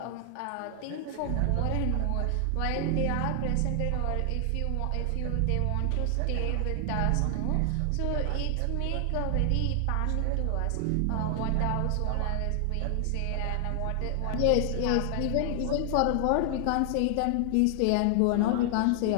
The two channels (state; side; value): different; both; correlation 0.00